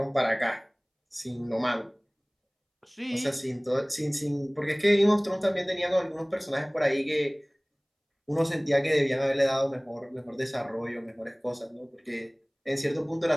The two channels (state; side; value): identical; both; correlation 1.00